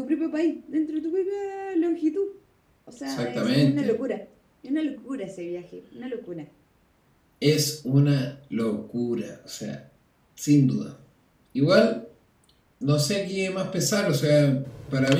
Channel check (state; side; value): identical; both; correlation 1.00